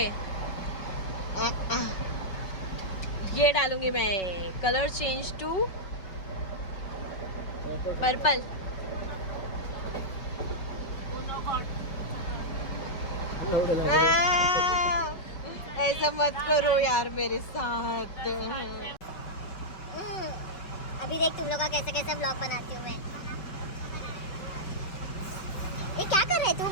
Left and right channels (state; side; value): late; right; 5.3 ms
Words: ये डालूंगी मैं. Colour change to purple. ऐसा मत करो यार मेरे साथ. अभी देख तुम लोग का कैसे कैसे ब्लॉग बनाती हूँ मैं. ये क्या कर है तू